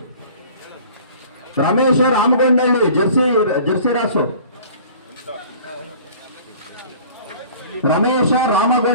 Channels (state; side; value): inverted; both; correlation -0.47